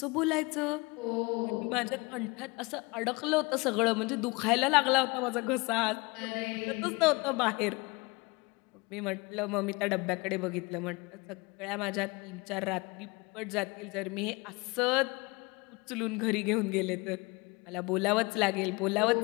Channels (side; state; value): right; quieter; 26.0 dB